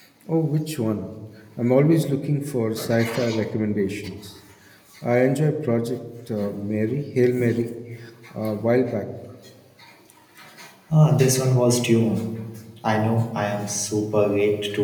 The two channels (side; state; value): both; identical; correlation 1.00